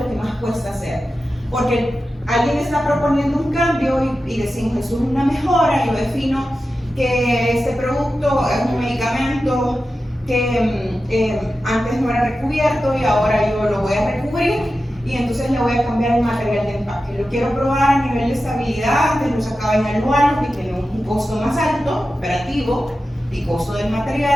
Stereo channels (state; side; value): normal; both; correlation 0.92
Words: que más cuesta hacer, porque alguien está proponiendo un cambio y decimos eso es una mejora. Yo defino que este producto es un medicamento que antes no era recubierto y ahora yo lo voy a recubrir, y entonces le voy a cambiar el material de empaque. Lo quiero probar a nivel de estabilidad, antes lo sacaba en aluminio que tiene un costo más alto, operativo y costo del